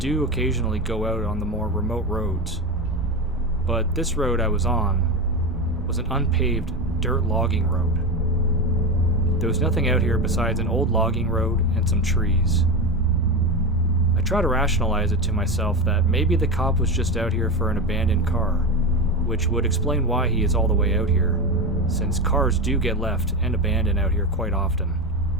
occasionally go out on the more remote roads. But this road I was on was an unpaved dirt logging road. There was nothing out here besides an old logging road and some trees. I try to rationalize it to myself that maybe the cop was just out here for an abandoned car, which would explain why he is all the way out here, since cars do get left and abandoned out here quite often.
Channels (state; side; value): normal; both; correlation 0.18